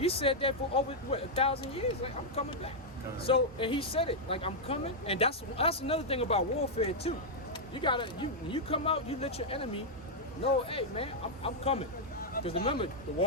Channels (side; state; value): both; normal; correlation -0.03